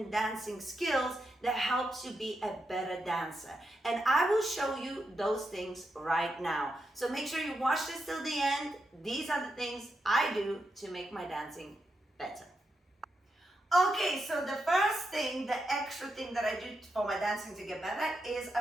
dancing skills that helps you be a better dancer. And I will show you those things right now. So make sure you watch this till the end. These are the things I do to make my dancing better. Okay, so the first thing, the extra thing that I do for my dancing to get better is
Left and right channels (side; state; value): both; normal; correlation 0.85